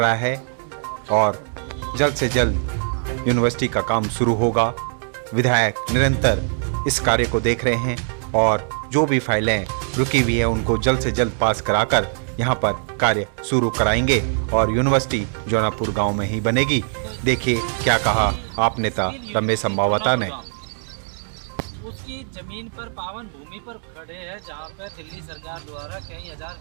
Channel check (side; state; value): left; silent; 64 dB below the other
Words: है और जल्द से जल्द यूनिवर्सिटी का काम शुरू होगा। विधायक निरंतर इस कार्य को देख रहे हैं और जो भी फाइलें रुकी हुई है उनको जल्द से जल्द पास कराकर यहाँ पर कार्य शुरू कराएंगे और यूनिवर्सिटी जौनापुर गांव में ही बनेगी। देखिए क्या कहा आप नेता रमेश संभावता ने। उसकी जमीन पर पावन भूमि पर खड़े हैं जहाँ पे दिल्ली सरकार द्वारा कई हजार